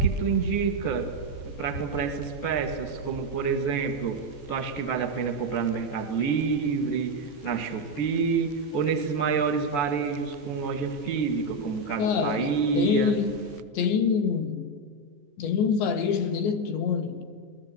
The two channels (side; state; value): right; late; 14 ms